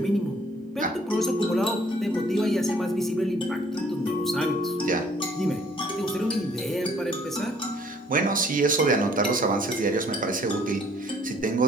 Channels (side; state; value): both; normal; correlation 0.60